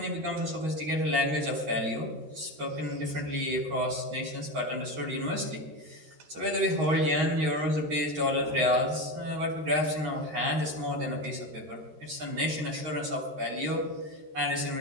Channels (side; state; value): left; late; 13 ms